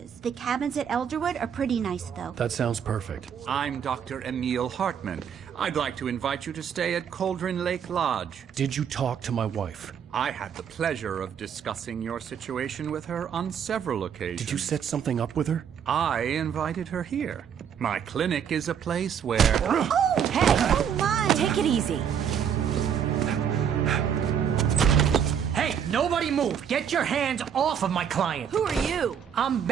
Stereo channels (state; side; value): quieter; left; 8.1 dB